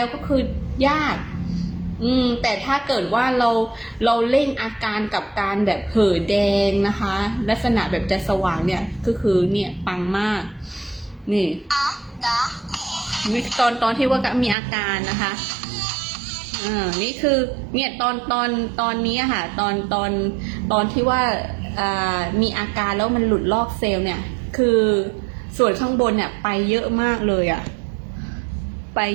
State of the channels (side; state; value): left; drops out; at 14.6 s